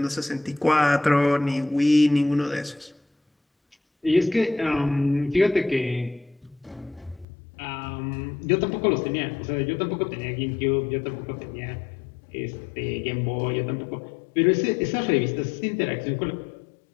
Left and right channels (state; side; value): drops out; right; at 7.2 s